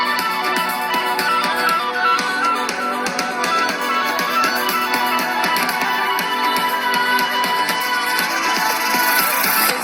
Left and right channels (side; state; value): both; identical; correlation 1.00